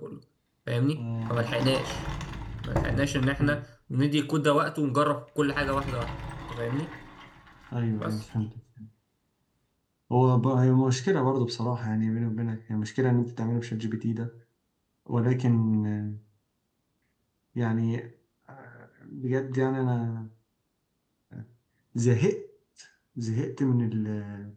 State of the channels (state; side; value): identical; both; correlation 1.00